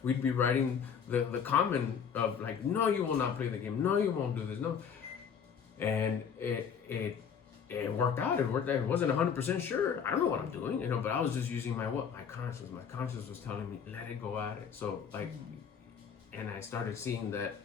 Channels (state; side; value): quieter; right; 7.2 dB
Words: we'd be writing the comment of like, no, you will not play the game. No, you won't do this. No. And it worked out. It worked out. It wasn't 100% sure. I don't know what I'm doing, but I was just using my conscience. My conscience was telling me, let it go at it. So like, and I started seeing that